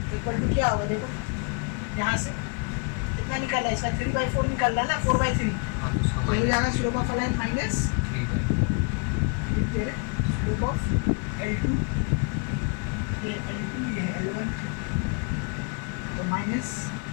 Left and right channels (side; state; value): right; quieter; 34.2 dB